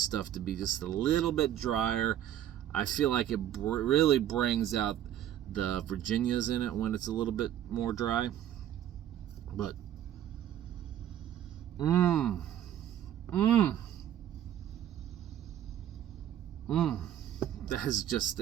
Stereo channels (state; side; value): quieter; left; 11.2 dB